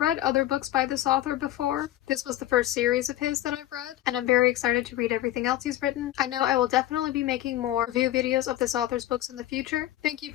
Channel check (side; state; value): right; quieter; 14.1 dB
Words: other books by this author before, this was the first series of his that I've read, and I'm very excited to read everything else he's written. I know I will definitely be making more review videos of this author's books in the future. Thank you